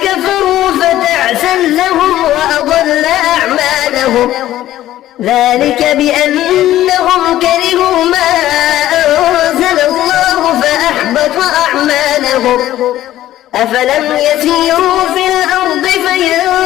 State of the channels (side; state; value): right; quieter; 13.7 dB